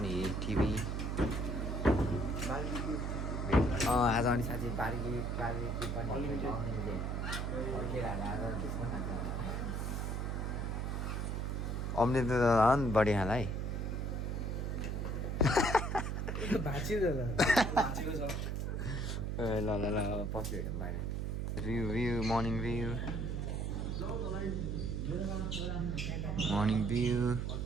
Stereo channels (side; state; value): right; noise; hum, 1 dB below the sound